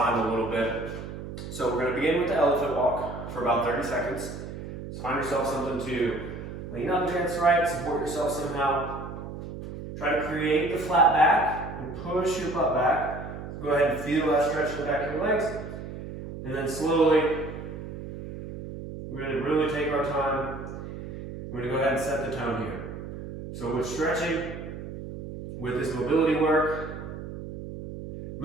a little bit. So we're going to begin with the elephant walk for about 30 seconds. So find yourself something to lean up against, right? Support yourself somehow. Try to create the flat back and push your butt back. Go ahead and feel that stretch in the back of your legs. And then slowly, we're going to really take our time. We're going to go ahead and set the tone here. So with stretching, with this mobility work,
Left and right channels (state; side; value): noise; right; hum, 9 dB below the sound